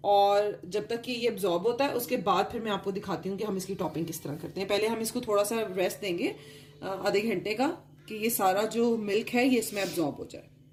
और जब तक कि ये एब्जॉर्ब होता है उसके बाद फिर मैं आपको दिखाती हूँ कि हम इसकी टॉपिंग किस तरह करते हैं। पहले हम इसको थोड़ा सा रेस्ट देंगे आधे घंटे का, कि ये सारा जो मिल्क है ये इसमें एब्जॉर्ब हो जाए।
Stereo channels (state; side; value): identical; both; correlation 1.00